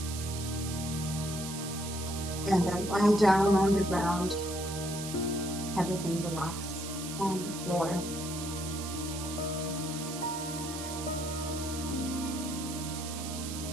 And then lie down on the ground. Everything relax on the floor.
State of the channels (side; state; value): right; noise; hiss, 8 dB below the sound